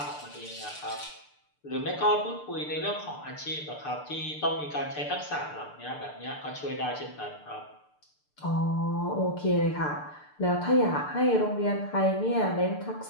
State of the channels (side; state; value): right; late; 6.8 ms